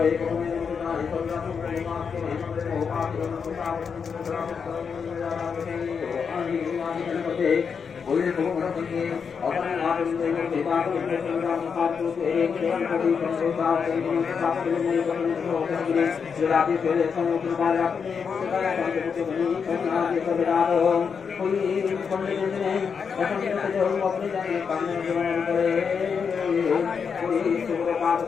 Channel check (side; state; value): right; quieter; 6.2 dB